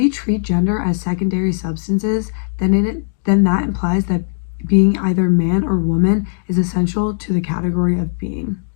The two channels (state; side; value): silent; right; digital silence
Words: treat gender as secondary substances, then that implies that being either man or woman is essential to the category of being.